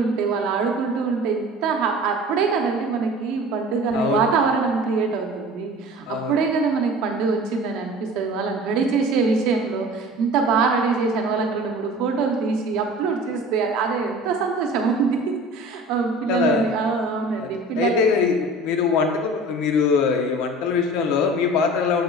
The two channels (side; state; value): both; normal; correlation 0.41